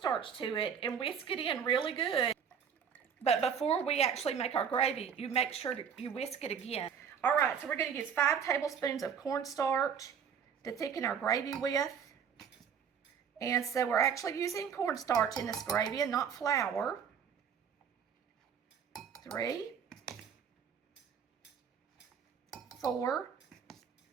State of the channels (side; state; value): left; quieter; 7.4 dB